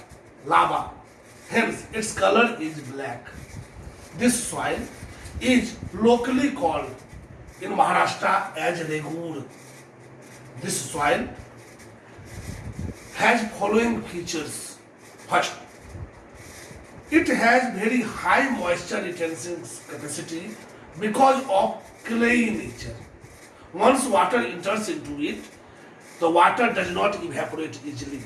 lava, hence its color is black. This soil is locally called in Maharashtra as Regur. This soil has following features. First, it has very high moisture retention capacity because of clayey nature. Once water enters into it, the water does not evaporate easily.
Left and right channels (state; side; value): identical; both; correlation 1.00